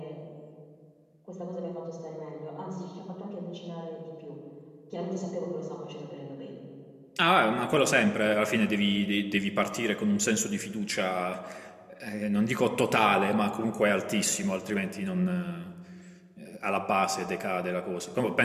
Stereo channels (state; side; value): identical; both; correlation 1.00